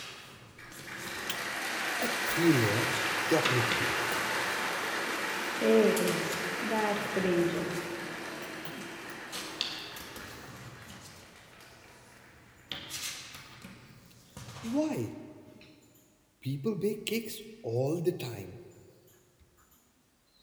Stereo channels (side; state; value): both; identical; correlation 1.00